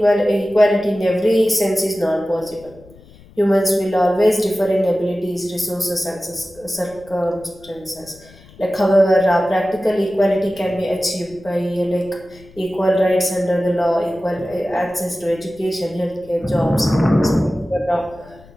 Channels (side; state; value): left; noise; rumble, 24 dB below the sound